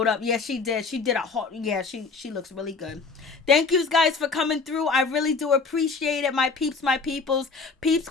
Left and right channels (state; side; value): quieter; right; 4.4 dB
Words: up. Yeah, she did. She did a hot. Yeah, she looks really good. Thank you guys for coming through. I really do appreciate it. My peeps, my peoples. Peep